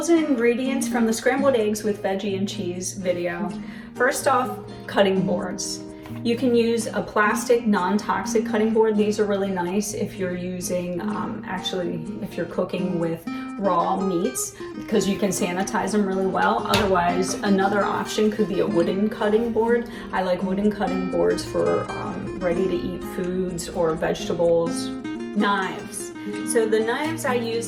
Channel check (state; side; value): identical; both; correlation 1.00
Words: and ingredients from the scrambled eggs with veggie and cheese video. First off, cutting boards. You can use a plastic non-toxic cutting board. These are really nice if you're using, if you're cooking with raw meats, because you can sanitize them really well. Otherwise, another option could be a wooden cutting board. I like wooden cutting boards for ready to eat foods or vegetables. Knives. So the knives I